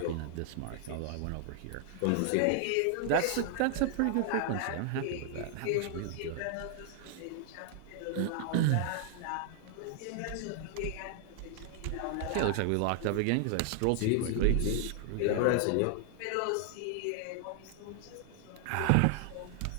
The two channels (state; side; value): different; both; correlation 0.00